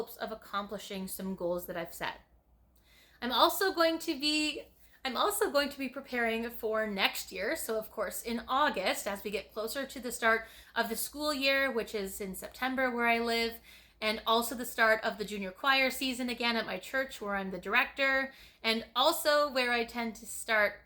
of accomplishing some goals that I've set. I'm also going to be preparing for next year. So of course, in August, as we get closer to the start of the school year, which is in September where I live, and also the start of the junior choir season again at my church where I'm the director, and also where I tend to start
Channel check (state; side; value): identical; both; correlation 1.00